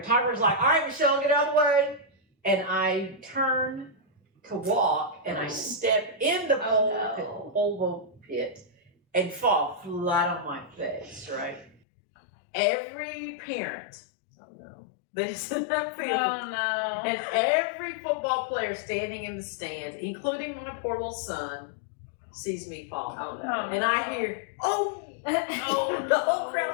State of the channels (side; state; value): right; drops out; at 11.8 s